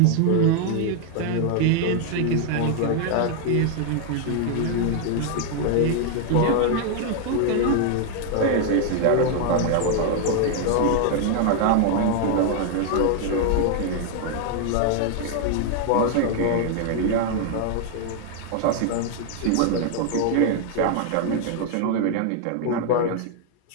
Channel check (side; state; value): both; different; correlation 0.00